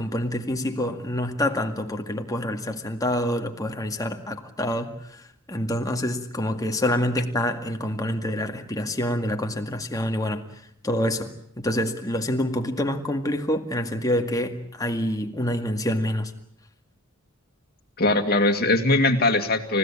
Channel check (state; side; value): normal; both; correlation 0.47